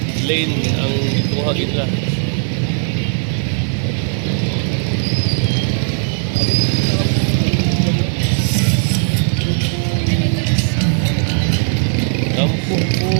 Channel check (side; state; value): left; silent; digital silence